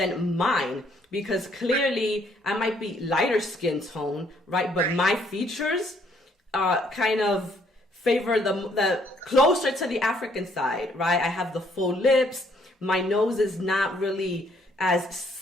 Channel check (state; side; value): normal; both; correlation 0.67